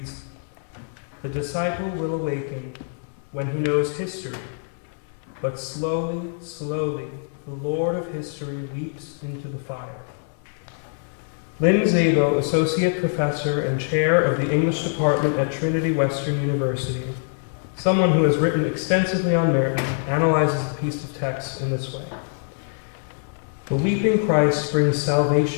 "The disciple will awaken when he knows history, but slowly, slowly, the Lord of history leaps into the fire." Lynn Zabel, Associate Professor and Chair of the English Department at Trinity Western University, someone who has written extensively on Merton, analyzes the piece of text in this way. The weeping Christ brings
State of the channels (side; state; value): right; silent; 63 dB below the other